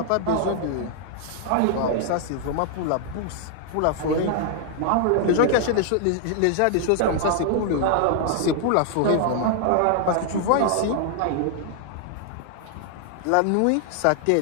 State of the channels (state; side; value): different; both; correlation 0.00